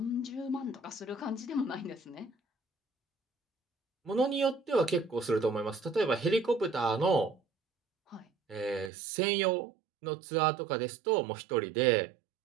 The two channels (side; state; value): left; drops out; at 8.9 s